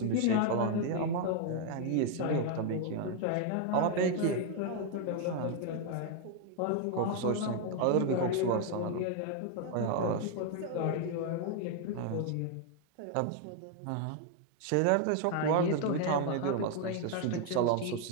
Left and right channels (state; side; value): different; both; correlation 0.00